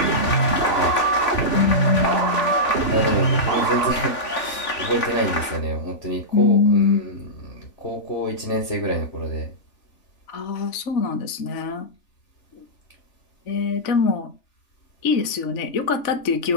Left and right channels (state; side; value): late; right; 3.4 ms